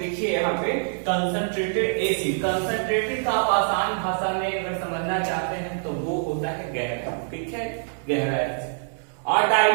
यहाँ पे कंसंट्रेटेड एसिड, कंसंट्रेटेड का आप आसान भाषा में अगर समझना चाहते हैं तो वो होता है गहरा, ठीक है, गहरा एसिड। और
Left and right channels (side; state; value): left; silent; digital silence